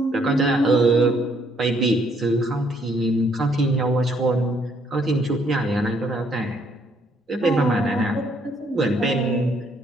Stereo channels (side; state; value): both; normal; correlation 0.68